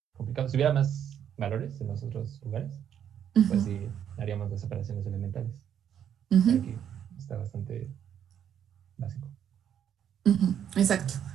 complicado. Si hubiera más valores en los otros lugares, pues sí, haríamos las operaciones elementales. Pero aquí está bastante básico. Exacto.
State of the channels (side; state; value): left; quieter; 9.2 dB